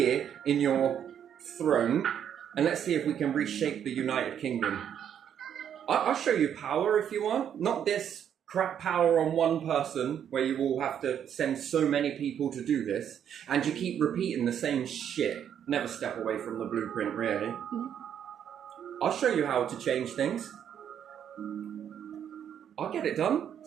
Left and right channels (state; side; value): quieter; left; 9.1 dB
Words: in your throne, and let's see if we can reshape the United Kingdom. I'll show you power if you want. Not this crap power on one person where you all have to send so many people to do this, and you keep repeating the same shit. Never step away from the blueprint, really. I'll show you how to change things. I'll get it done.